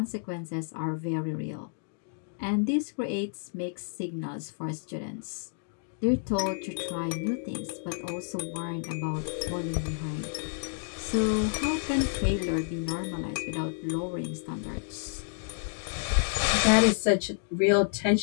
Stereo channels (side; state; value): right; silent; digital silence